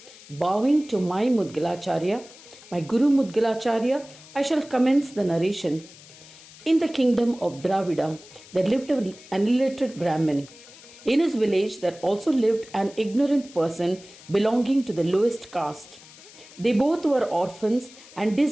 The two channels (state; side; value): noise; left; hiss, 21 dB below the sound